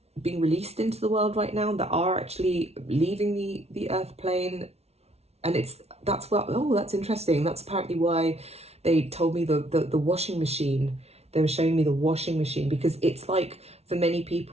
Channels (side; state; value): left; late; 0.31 ms